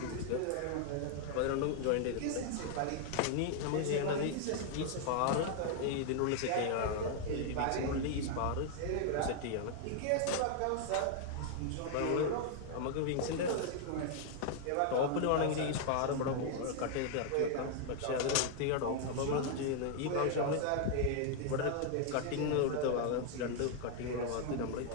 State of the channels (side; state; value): both; different; correlation 0.00